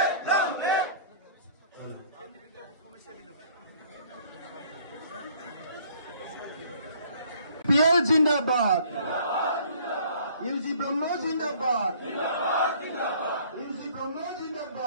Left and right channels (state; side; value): inverted; both; correlation -0.56